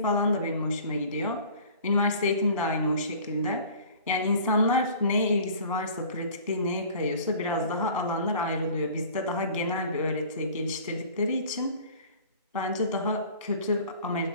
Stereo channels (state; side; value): inverted; both; correlation -0.46